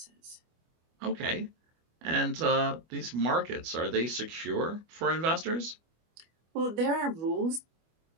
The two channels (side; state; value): left; late; 25 ms